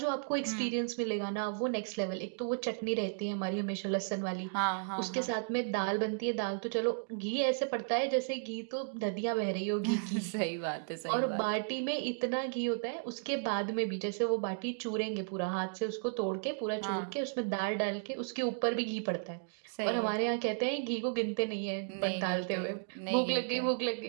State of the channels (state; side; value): silent; left; digital silence